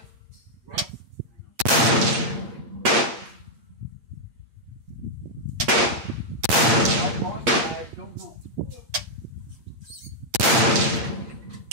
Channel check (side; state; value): left; late; 8.7 ms